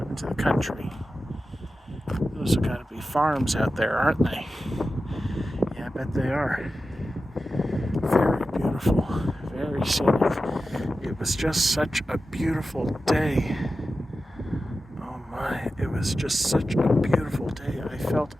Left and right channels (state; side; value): normal; both; correlation 0.93